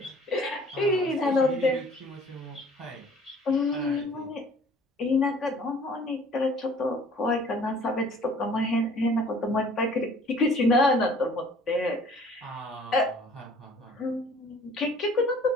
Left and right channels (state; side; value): normal; both; correlation 0.52